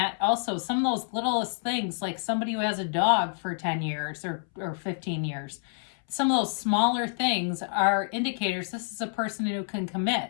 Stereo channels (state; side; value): silent; right; 59 dB below the other